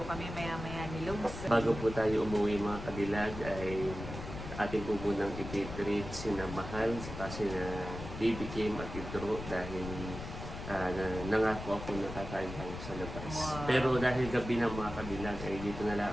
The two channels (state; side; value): noise; left; rumble, 9 dB below the sound